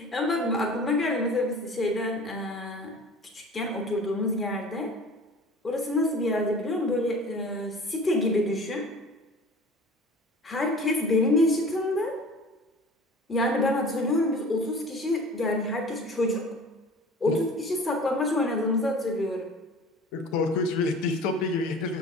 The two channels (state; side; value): normal; both; correlation 0.42